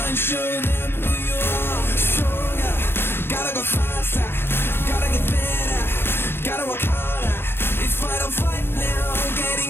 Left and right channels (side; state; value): right; late; 0.11 ms